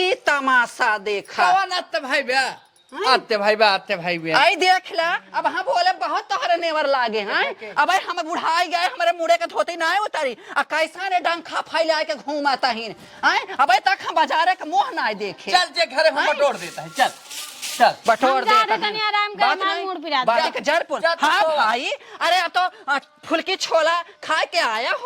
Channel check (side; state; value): both; identical; correlation 1.00